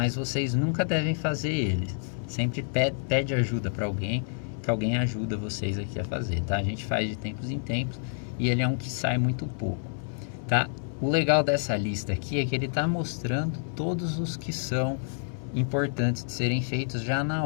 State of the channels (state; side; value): silent; right; 59 dB below the other